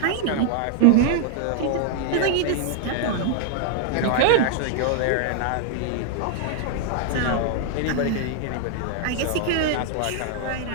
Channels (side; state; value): both; different; correlation 0.00